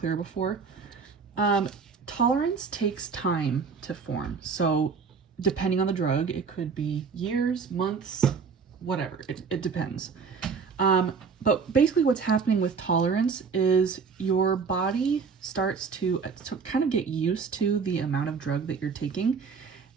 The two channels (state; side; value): quieter; left; 5.5 dB